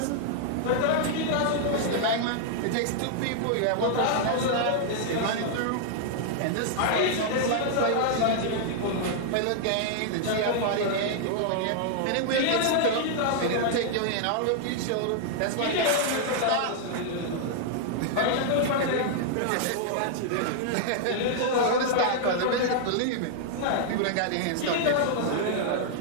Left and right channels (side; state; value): both; different; correlation -0.01